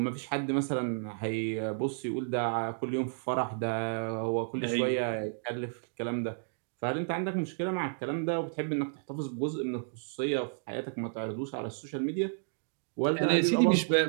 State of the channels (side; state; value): left; silent; digital silence